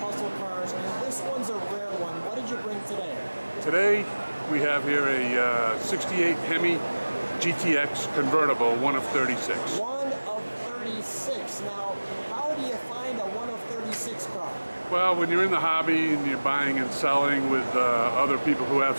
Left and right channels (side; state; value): both; inverted; correlation -1.00